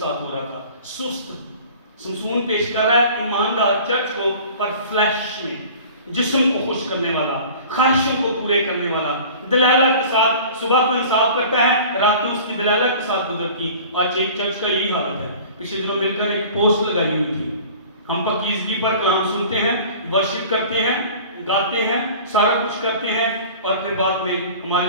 ہو رہا تھا، سست۔ سمسون پیش کر رہا ہے ایماندار چرچ کو، پر فلیش میں، جسم کو خوش کرنے والا، خواہشوں کو پورے کرنے والا، دلالہ کے ساتھ صبح کو انصاف کرتا ہے، رات کو اس کی دلالہ کے ساتھ گزرتی. آج ایک چرچ کا یہی حالت ہے. پچھلے دنوں مل کر ایک پوسٹ لگائی ہوئی تھی. ہم پاکیزگی پر کلام سنتے ہیں، ورشپ کرتے ہیں، گاتے ہیں، سارا کچھ کرتے ہیں، اور پھر بعد میں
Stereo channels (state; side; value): inverted; both; correlation -0.43